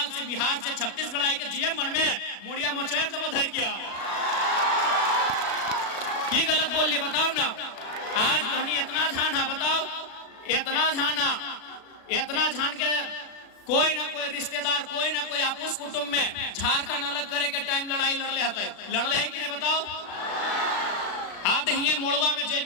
से, बिहार से, छत्तीसगढ़ आए के जीएम बन में मुड़िया मोचेर से धर किया। की गलत बोल लिए बताओ ना। आज तो इतना झान है, बताओ इतना झान के कोई ना कोई रिश्तेदार, कोई ना कोई आपस कुटुंब में झारखंड अलग करे के टाइम लड़ाई लड़ले है कि नहीं बताओ। आज हिये मोड़वा में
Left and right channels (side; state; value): right; late; 36 ms